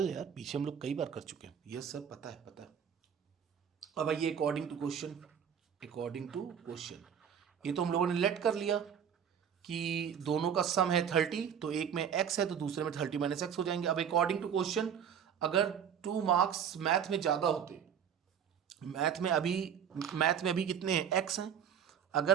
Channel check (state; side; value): quieter; left; 8.1 dB